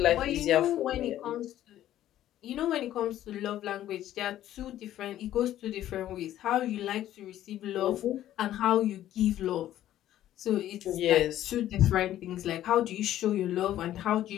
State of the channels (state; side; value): quieter; right; 12.7 dB